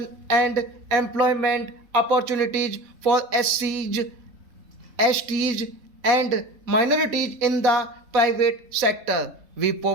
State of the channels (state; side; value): late; left; 4.2 ms